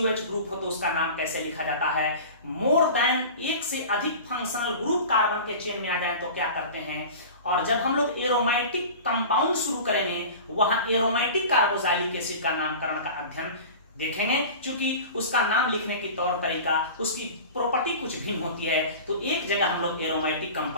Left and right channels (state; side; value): inverted; both; correlation -0.36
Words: ग्रुप हो तो उसका नाम कैसे लिखा जाता है। मोर देन एक से अधिक फंक्शनल ग्रुप कार्बन के चेन में आ जाए तो क्या करते हैं। और जब हम लोग एरोमेटिक कंपाउंड शुरू करेंगे वहां एरोमेटिक कार्बोक्सिलिक एसिड का नामकरण का अध्ययन देखेंगे, क्योंकि उसका नाम लिखने की तौर तरीका, उसकी प्रॉपर्टी कुछ भिन्न होती है। तो एक जगह हम लोग एरोमेटिक